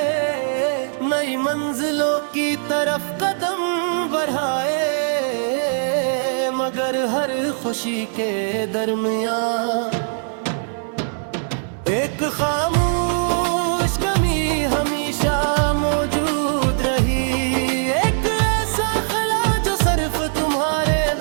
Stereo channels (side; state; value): left; silent; 64 dB below the other